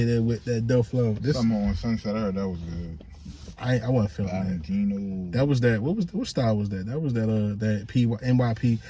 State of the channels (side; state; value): both; identical; correlation 1.00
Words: it with that dope flow. Something on Sunset. I heard that was good. I wasn't feeling Valentino. that. That was that. What style was that? That was that NYP.